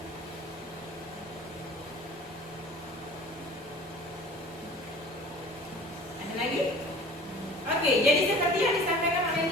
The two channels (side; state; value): both; normal; correlation 0.44